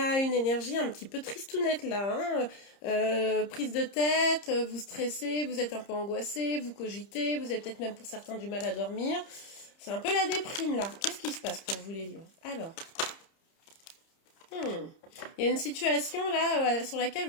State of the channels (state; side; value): late; right; 30 ms